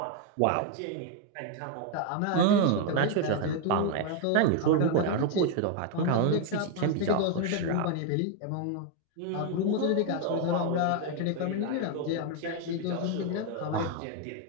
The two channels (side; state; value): both; different; correlation 0.01